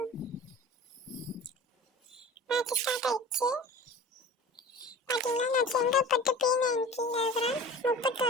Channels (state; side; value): normal; both; correlation 0.39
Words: மேட்ச் ஸ்டார்ட் ஆயிடுச்சு. பார்த்தீங்கன்னா நான் செங்கல்பட்டு P90 இருக்கிறேன்.